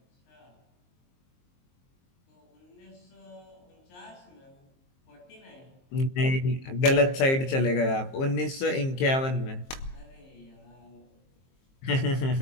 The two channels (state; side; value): late; right; 23 ms